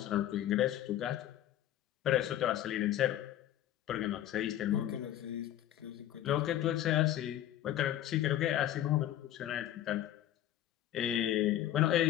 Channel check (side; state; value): right; quieter; 12.5 dB